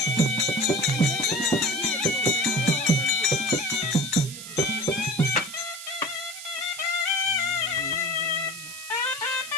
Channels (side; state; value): right; noise; hiss, 11 dB below the sound